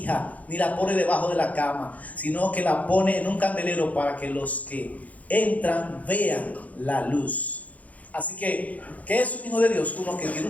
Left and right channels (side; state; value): right; late; 0.072 ms